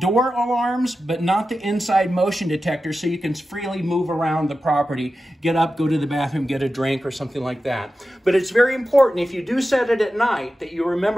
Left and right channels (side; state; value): both; normal; correlation 0.93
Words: alarms, but not the inside motion detector, so you can freely move around the property, get up, go to the bathroom, get a drink or something like that. But it's very important, if you do set it at night, that you